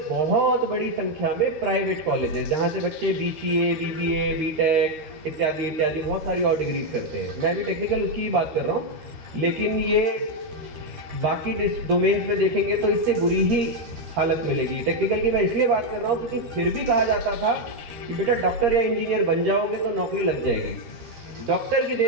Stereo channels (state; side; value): late; left; 13 ms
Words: बहुत बड़ी संख्या में प्राइवेट कॉलेजेस जहाँ से बच्चे BCA, BBA, BTech इत्यादि इत्यादि बहुत सारी और डिग्रीज करते हैं। मैं भी टेक्निकल उसकी ही बात कर रहा हूँ, लेकिन ये बाकी डोमेन्स में देखेंगे तो इससे बुरी ही हालत मिलेगी। टेक्निकल की मैं इसलिए बात कर रहा हूँ क्योंकि फिर भी कहा जाता था कि बेटा डॉक्टर या इंजीनियर बन जाओगे तो नौकरी लग जाएगी। डॉक्टर की